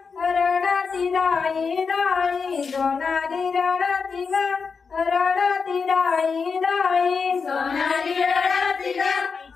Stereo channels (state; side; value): quieter; right; 5.3 dB